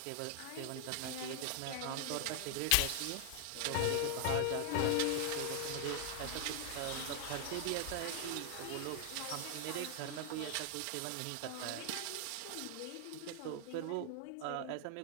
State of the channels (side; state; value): both; different; correlation 0.00